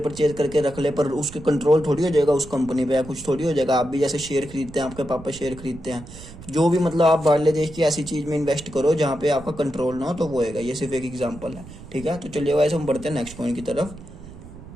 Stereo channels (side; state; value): right; noise; rumble, 16 dB below the sound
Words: करके रख ले, पर उसके कंट्रोल थोड़ी हो जाएगा उस कंपनी पे, या कुछ थोड़ी हो जाएगा। आप भी जैसे शेयर खरीदते हैं, आपके पापा शेयर खरीदते हैं, जो भी मतलब आप बाहरले देश की ऐसी चीज में इन्वेस्ट करो जहाँ पे आपका कंट्रोल ना हो, तो वो होगा। ये सिर्फ एक एग्जाम्पल है। ठीक है, तो चलिए वैसे हम बढ़ते हैं नेक्स्ट पॉइंट की तरफ।